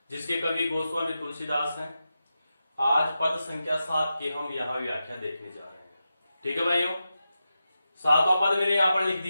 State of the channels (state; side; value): inverted; both; correlation -0.90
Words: जिसके कवि गोस्वामी तुलसीदास हैं। आज पद संख्या 7 की हम यहाँ व्याख्या देखने जा रहे हैं। ठीक है भाइयों, 7वां पद मैंने यहाँ पर लिख